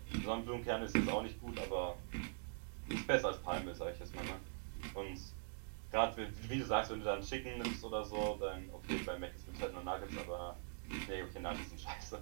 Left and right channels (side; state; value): left; silent; digital silence